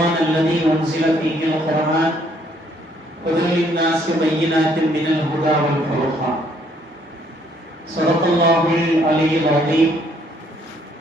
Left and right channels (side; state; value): both; normal; correlation 0.66